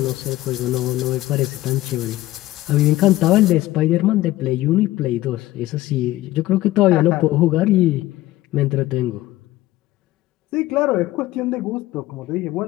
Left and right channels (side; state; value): right; quieter; 16.3 dB